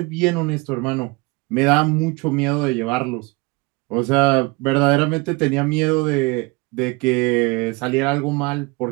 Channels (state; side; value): quieter; left; 25.9 dB